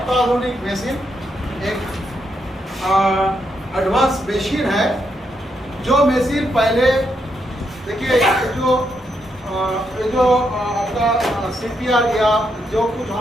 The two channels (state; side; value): normal; both; correlation 0.80